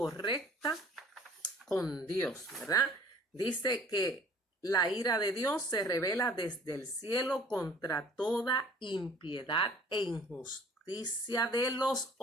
con Dios, ¿verdad? Dice que la ira de Dios se revela desde el cielo contra toda impiedad e injusticia de los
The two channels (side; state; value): both; normal; correlation 0.51